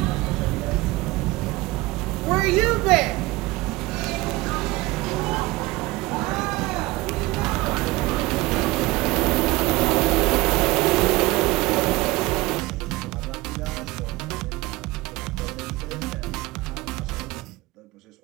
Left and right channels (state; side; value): quieter; left; 20.7 dB